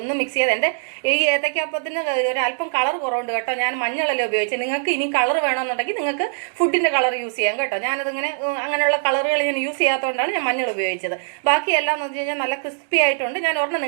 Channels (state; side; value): silent; left; digital silence